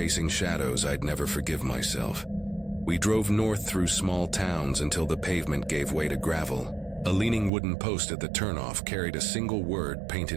shadows, I'd never forgive myself. We drove north through small towns until the pavement gave way to gravel. A leaning wooden post at the turnoff carried a single word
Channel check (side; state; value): left; drops out; at 7.5 s